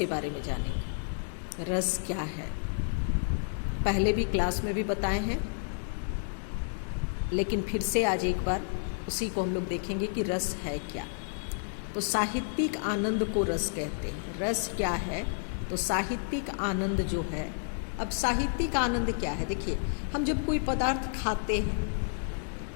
बारे में जानेंगे। रस क्या है? पहले भी क्लास में भी बताए हैं, लेकिन फिर से आज एक बार उसी को हम लोग देखेंगे कि रस है क्या। तो साहित्यिक आनंद को रस कहते हैं। रस क्या है? तो साहित्यिक आनंद जो है, अब साहित्यिक आनंद क्या है? देखिए, हम जब कोई पदार्थ खाते हैं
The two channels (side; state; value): right; silent; digital silence